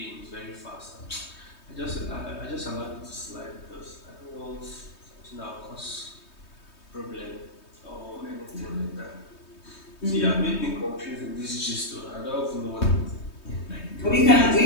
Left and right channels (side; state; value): right; late; 3.2 ms